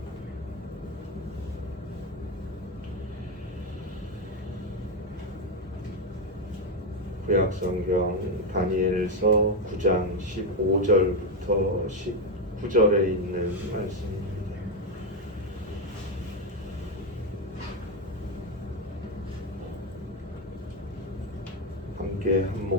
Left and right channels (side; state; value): both; normal; correlation 0.08